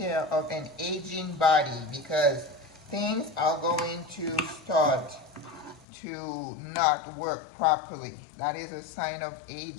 of an aging body because things are going to start to not work properly. That is a sign of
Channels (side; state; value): right; drops out; at 5.9 s